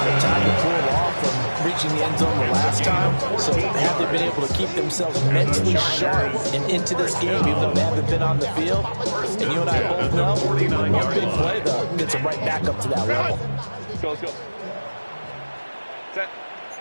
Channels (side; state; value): both; inverted; correlation -1.00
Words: of time to cool off from reaching the end zone the last time. So have they been able to keep themselves mentally sharp and into this game, even though they haven't been on the field? And you and I both know, one big play, though, gets them right back up to that level. Let's go, let's go. Set.